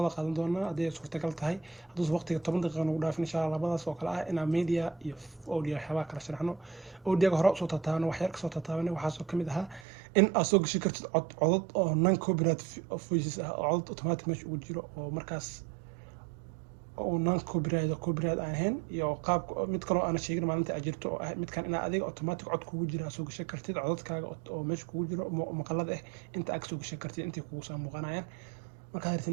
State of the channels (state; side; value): drops out; left; at 9.9 s